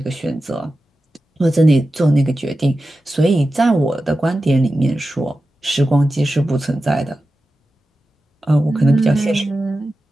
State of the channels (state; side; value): normal; both; correlation 0.93